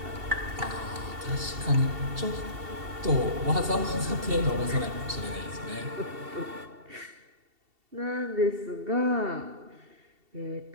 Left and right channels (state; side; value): late; left; 2.7 ms